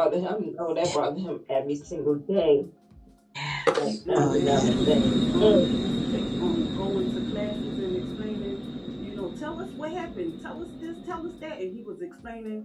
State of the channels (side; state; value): both; identical; correlation 1.00